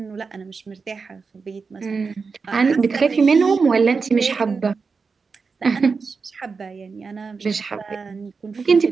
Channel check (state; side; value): quieter; left; 4.9 dB